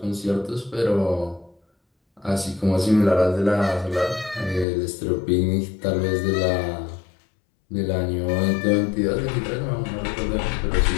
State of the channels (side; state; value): right; drops out; at 4.7 s